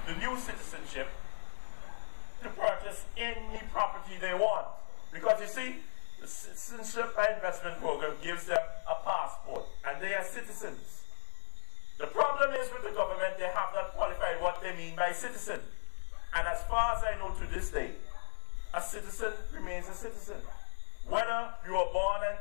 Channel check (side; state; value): right; silent; 52 dB below the other